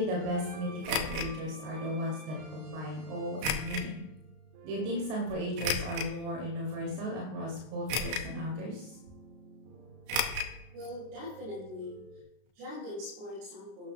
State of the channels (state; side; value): late; left; 32 ms